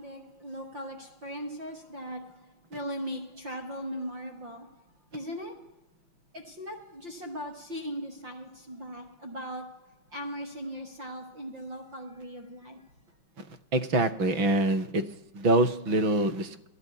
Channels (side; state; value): left; late; 6.0 ms